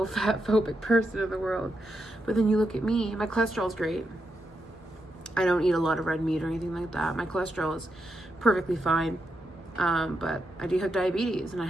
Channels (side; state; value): both; normal; correlation 0.84